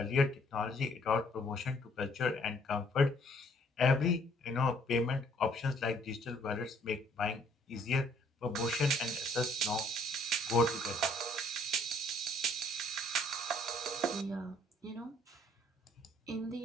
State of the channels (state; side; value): normal; both; correlation 0.62